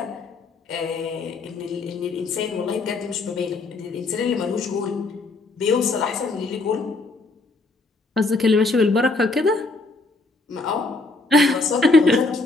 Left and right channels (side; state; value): right; quieter; 3.4 dB